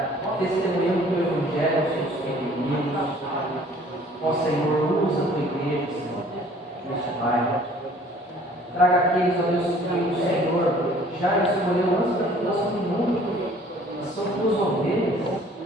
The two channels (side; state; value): both; normal; correlation 0.54